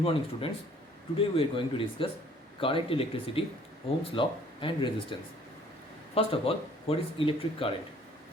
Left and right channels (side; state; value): both; normal; correlation 0.57